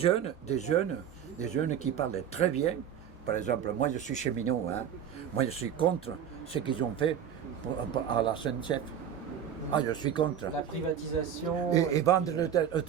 qui parlent très bien. Par exemple, moi je suis cheminot, hein. Moi je suis contre ce qu'ils ont fait à la SNCF. Ah, je suis contre. La privatisation. Et vendre le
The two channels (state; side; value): quieter; left; 9.0 dB